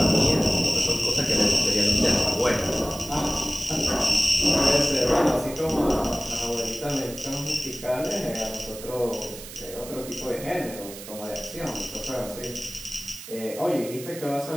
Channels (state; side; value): noise; right; hiss, 13 dB below the sound